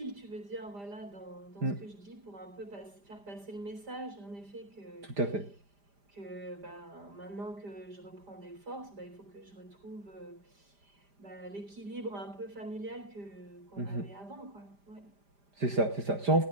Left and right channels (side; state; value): left; late; 5.0 ms